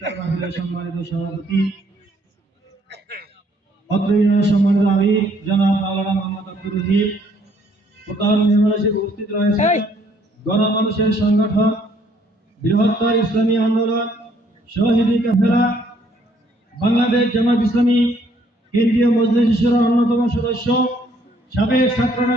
মাহফিলের সম্মানিত সভাপতি অত্র ইউনিয়নের সম্মানিত আমির জনাব মাওলানা মোহাম্মদ আব্দুর রহিম, প্রধান মেহমান হিসেবে উপস্থিত রয়েছে গণমানুষের সংগঠন বৃহত্তর ইসলামী আন্দোলন শহীদি কাফেলা বাংলাদেশ জামাত ইসলামী কেন্দ্রীয় মজলিস শুরার অন্যতম সদস্য সাবেক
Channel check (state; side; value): normal; both; correlation 0.65